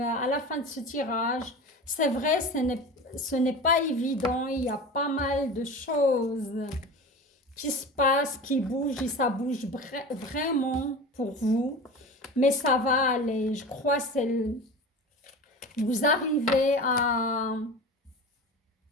la fin de ce tirage. C'est vrai, ce n'est pas évident. Il y a pas mal de choses qui se passent, qui bougent et ça bouge vraiment pour vous. Mais ça va aller. Je crois que vous arrivez à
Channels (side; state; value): both; normal; correlation 0.33